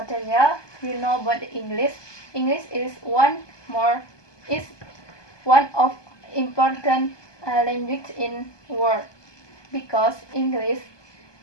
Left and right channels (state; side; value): late; right; 1.2 ms